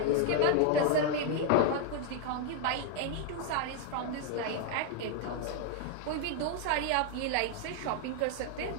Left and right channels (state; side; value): different; both; correlation 0.00